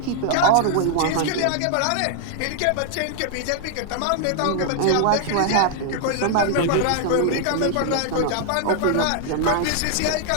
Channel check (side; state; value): both; different; correlation 0.00